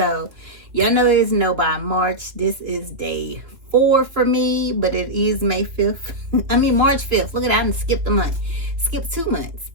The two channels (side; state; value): left; late; 2.7 ms